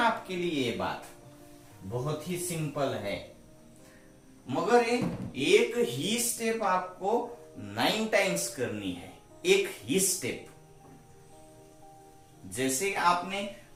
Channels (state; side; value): identical; both; correlation 1.00